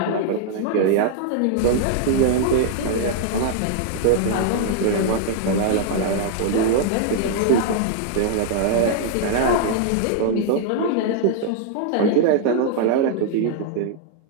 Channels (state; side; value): different; both; correlation -0.01